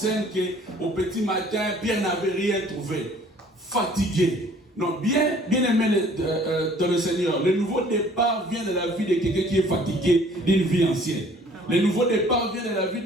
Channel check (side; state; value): both; normal; correlation 0.55